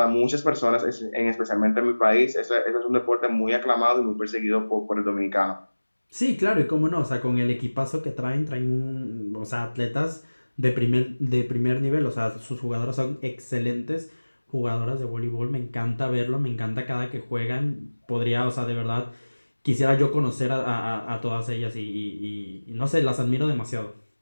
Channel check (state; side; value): inverted; both; correlation -1.00